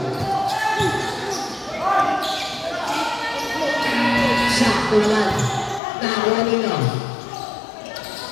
Sakto naman. Nakuha nino.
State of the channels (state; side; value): drops out; right; at 5.8 s